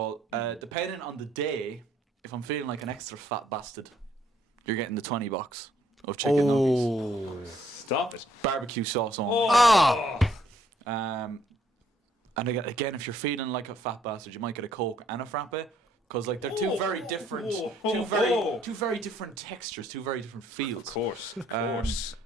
Depending on the day, if I'm feeling like an extra fat bastard, you're getting the 20 box of chicken nuggets, Stop it. barbecue sauce on. And again, if you're feeling like a fat bastard, you might get a Coke and a frappe, because like they're two very different, two very different textures, two very different feels. Of course.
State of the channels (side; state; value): both; normal; correlation 0.66